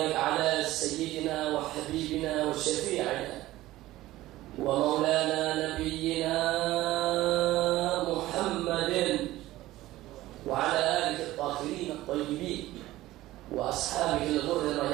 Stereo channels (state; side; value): quieter; left; 16.4 dB